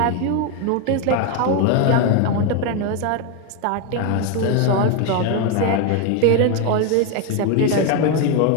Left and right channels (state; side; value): different; both; correlation 0.02